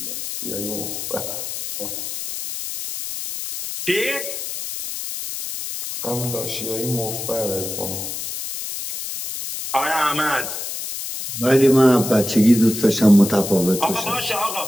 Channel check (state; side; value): noise; left; hiss, 6 dB below the sound